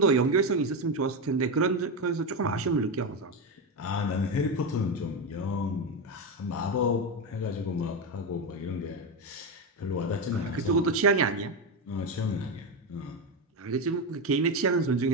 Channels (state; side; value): normal; both; correlation 0.12